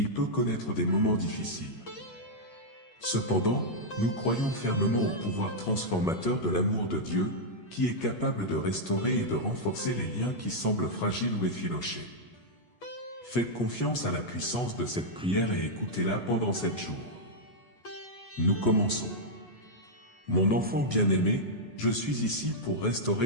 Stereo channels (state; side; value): late; right; 8.3 ms